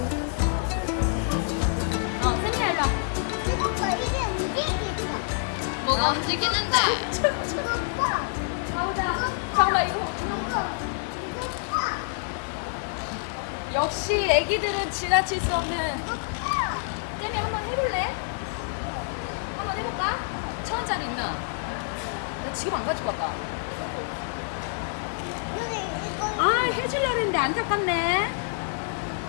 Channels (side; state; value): right; silent; digital silence